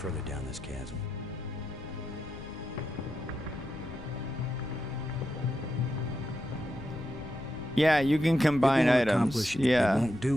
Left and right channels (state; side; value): noise; left; rumble, 15 dB below the sound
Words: down this chasm. Yeah, you can combine It won't items. accomplish- Yeah. It won't